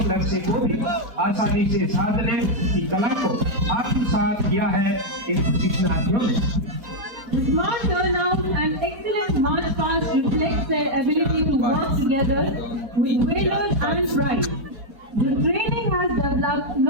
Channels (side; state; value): left; late; 4.4 ms